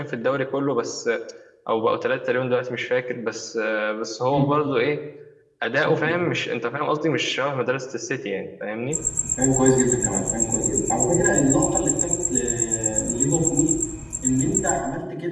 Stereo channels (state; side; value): identical; both; correlation 1.00